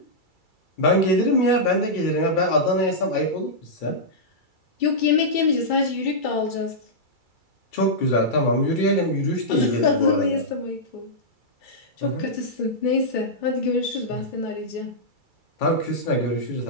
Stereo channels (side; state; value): right; late; 2.3 ms